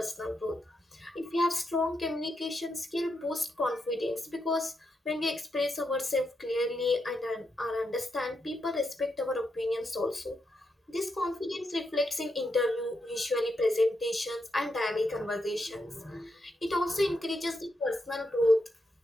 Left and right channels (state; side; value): normal; both; correlation 0.83